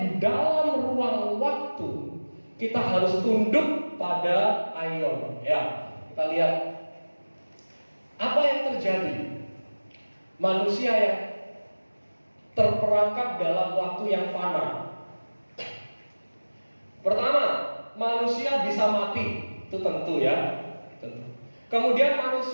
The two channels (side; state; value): both; inverted; correlation -1.00